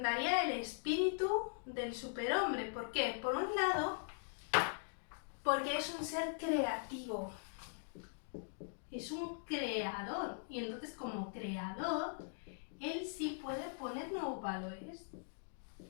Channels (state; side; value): silent; right; digital silence